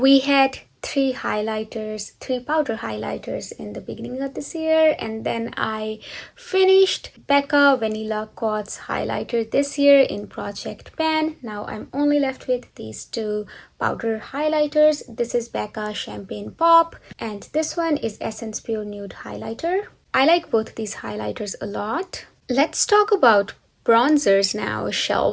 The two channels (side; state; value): both; identical; correlation 1.00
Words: had three powder highlighters in the beginning of this year, and then I finished Becca Vanilla Quartz highlighter this year in Project Pan. Now I'm only left with these two powder highlighters. This is Becca Champagne Pop, and this one is Essence Pure Nude highlighter. I like both these highlighters a lot. Let's talk about bronzers now,